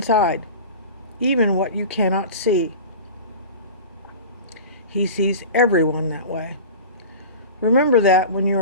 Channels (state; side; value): inverted; both; correlation -0.35